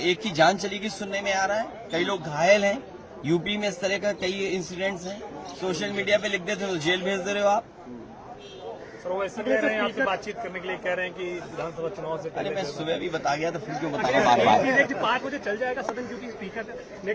की जान चली गई सुनने में आ रहा है, कई लोग घायल हैं। यूपी में इस तरह का कई इंसिडेंट्स हैं, सोशल मीडिया पे लिख देते हो तो जेल भेज दे रहे हो आप। सर वो ऐसे कह रहे हैं, आपसे बातचीत करने के लिए कह रहे हैं कि विधानसभा चुनाव से अरे मैं सुबह भी बता गया तो फिर क्यों बताऊंगा बार बार? 5 बजे चल जाएगा सदन, क्योंकि स्पीकर ने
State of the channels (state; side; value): identical; both; correlation 1.00